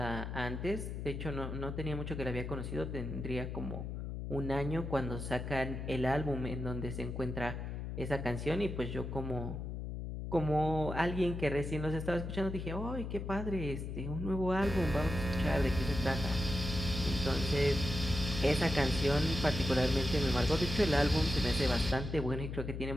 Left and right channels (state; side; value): noise; left; hum, 5 dB below the sound